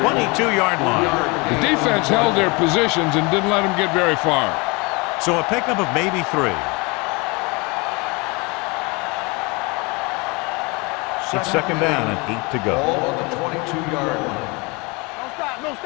22-yard line. The defense held their positions and didn't let them get very far. So a pickup of maybe 3. It's 2nd down and 8 to go. Ball on the 22-yard line. Don't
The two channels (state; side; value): quieter; right; 27.5 dB